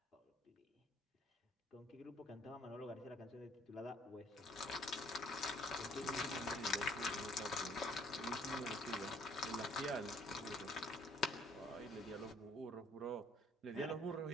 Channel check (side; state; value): both; normal; correlation 0.61